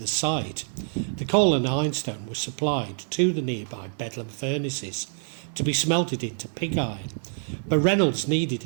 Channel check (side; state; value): left; silent; 61 dB below the other